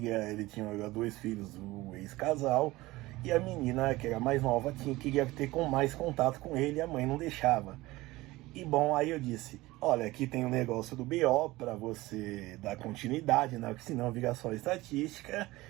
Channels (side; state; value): left; quieter; 19.3 dB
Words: ele tinha 2 filhos, o ex-casal, e a menina, que era mais nova, queria ter mais contato com ele, e a mãe não deixava. E bom, aí eu disse: olha, aqui tem um negócio do BO para você dar continuidade, né? Porque senão vira só estatística.